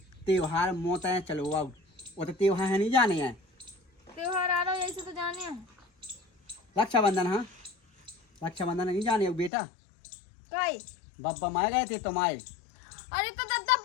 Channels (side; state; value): right; drops out; at 9.5 s